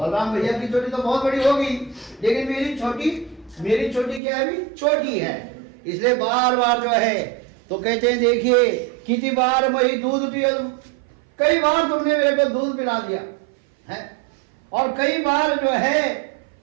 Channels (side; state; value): left; drops out; at 4.2 s